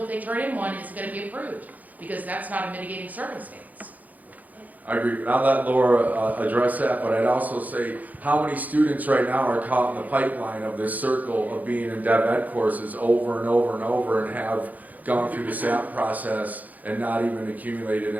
they turn in one, is going to be approved because that's not a mitigating circumstance. I agree. I'll let Laura address that, but I'd also say how many students right now are caught in the pipeline of this circle of being in dev ed courses over and over and over and have gone through the SAP process and not even accumulated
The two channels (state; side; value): late; left; 0.079 ms